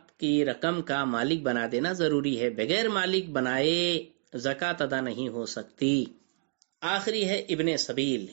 کی رقم کا مالک بنا دینا ضروری ہے، بغیر مالک بنائے زکوٰۃ ادا نہیں ہو سکتی۔ آخری ہے ابن سبیل۔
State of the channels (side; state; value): left; silent; digital silence